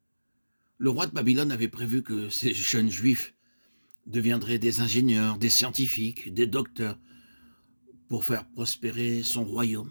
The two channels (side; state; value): both; inverted; correlation -1.00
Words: Le roi de Babylone avait prévu que ces jeunes juifs deviendraient des ingénieurs, des scientifiques, des docteurs, pour faire prospérer son